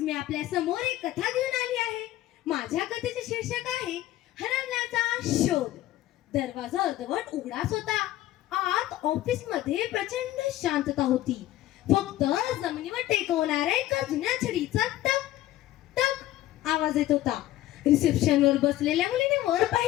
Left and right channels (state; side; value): quieter; right; 14.8 dB